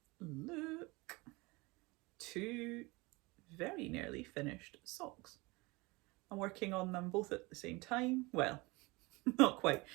look, 2 very nearly finished socks. I'm working on them both at the same time. Well, not quite.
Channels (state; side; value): quieter; left; 24.4 dB